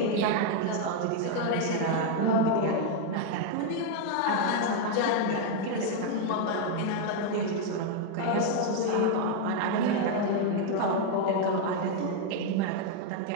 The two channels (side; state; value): both; different; correlation 0.01